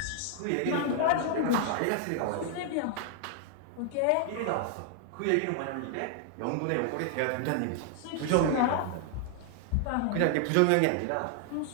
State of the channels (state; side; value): different; both; correlation 0.00